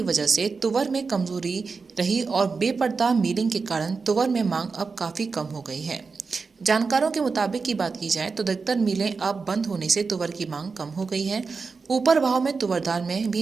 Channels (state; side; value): quieter; left; 4.7 dB